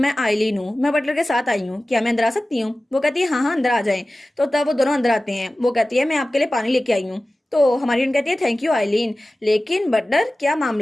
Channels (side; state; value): both; normal; correlation 0.96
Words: आइलीन हूँ, मैं बटलर के साथ आई हूँ, क्या मैं अंदर आ सकती हूँ। वो कहती है हाँ हाँ अंदर आ जाएं। तो तब वो दोनों अंदर आते हैं। वो कहती है मैं आपके लिए पानी लेके आई हूँ। तो हमारी कहती है थैंक यू आइलीन, लेकिन बटलर क्या